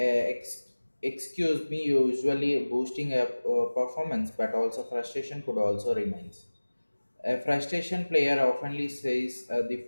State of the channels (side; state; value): both; inverted; correlation -1.00